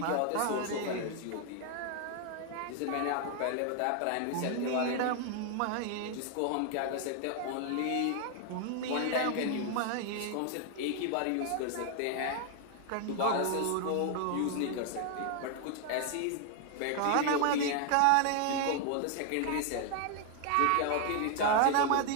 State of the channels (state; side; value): different; both; correlation 0.00